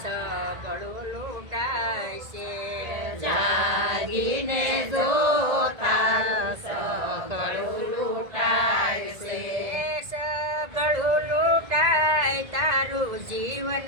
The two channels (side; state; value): left; late; 1.9 ms